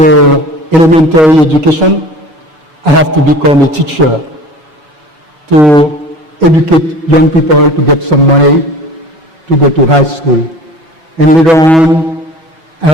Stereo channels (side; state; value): both; normal; correlation 0.41